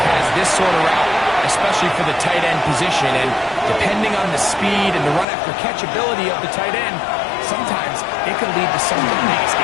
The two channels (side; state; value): right; drops out; at 5.2 s